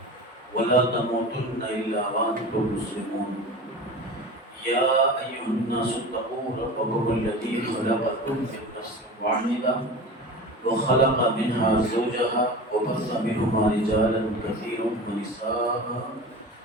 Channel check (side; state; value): both; normal; correlation 0.33